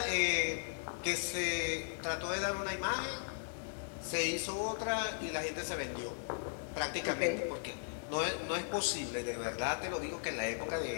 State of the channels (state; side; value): silent; right; digital silence